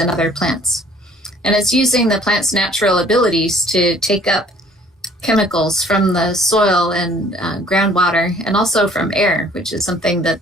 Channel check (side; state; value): both; normal; correlation 0.56